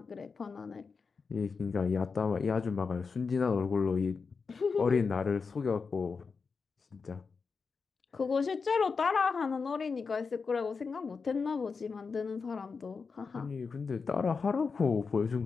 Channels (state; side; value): quieter; right; 5.0 dB